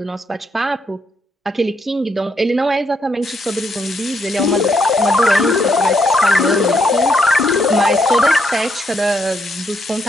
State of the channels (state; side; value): normal; both; correlation 0.76